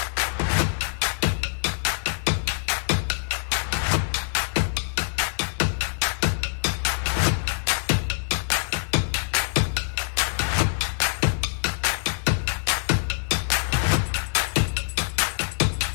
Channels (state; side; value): silent; right; digital silence